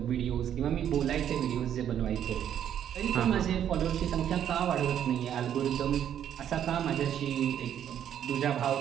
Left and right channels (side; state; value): left; quieter; 9.9 dB